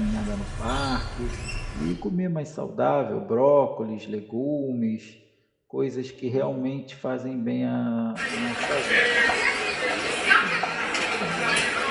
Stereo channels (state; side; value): identical; both; correlation 1.00